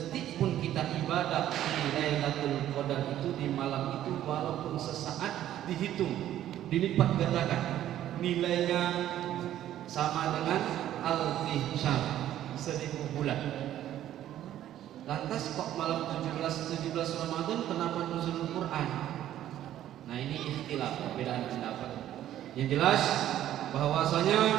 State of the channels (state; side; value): quieter; left; 12.2 dB